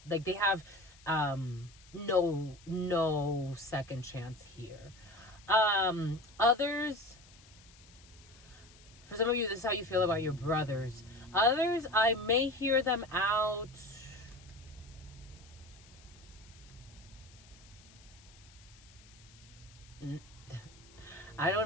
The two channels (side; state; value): left; noise; hiss, 24 dB below the sound